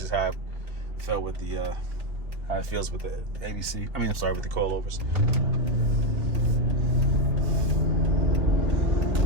how it felt with the how it feels with the ABC. I mean, I'm sorry, with the coilovers.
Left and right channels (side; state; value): left; late; 2.2 ms